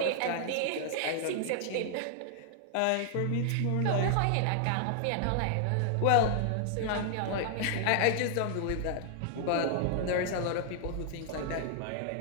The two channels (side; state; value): both; different; correlation -0.01